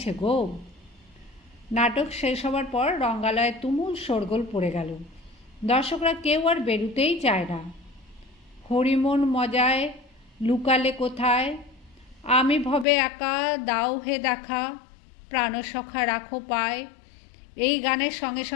গো। নাটক শেষ হবার পর রঙ্গালয়ে তুমুল শোরগোল পড়ে গেল। দর্শকরা কেউ আর বেরুতেই চায় না। হরিমন মজায় লুকালে কোথায়, আমি ভবে একা দাও হে দেখা, প্রাণসখা রাখো পায়, এই গানের সঙ্গে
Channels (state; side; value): drops out; right; at 12.9 s